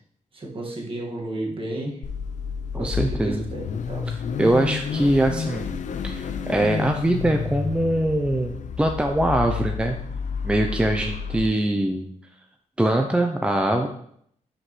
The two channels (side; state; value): both; normal; correlation 0.85